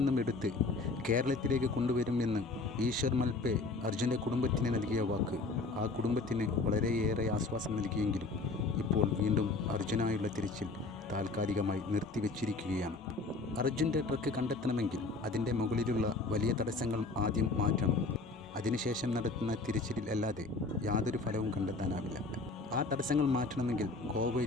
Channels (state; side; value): quieter; right; 3.6 dB